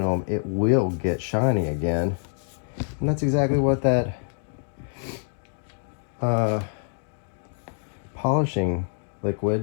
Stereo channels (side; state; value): right; silent; digital silence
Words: it will get shiny again. And that's exactly what that polishing